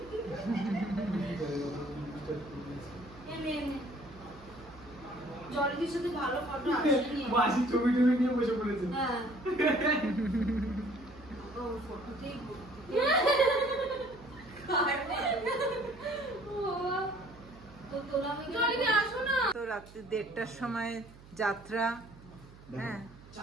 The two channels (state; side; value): noise; right; hum, 21 dB below the sound